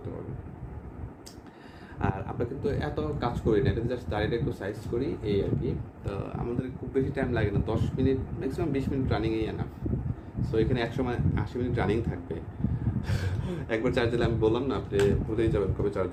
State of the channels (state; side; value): identical; both; correlation 1.00